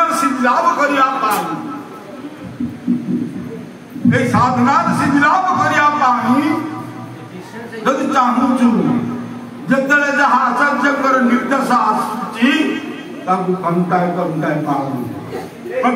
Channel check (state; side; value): identical; both; correlation 1.00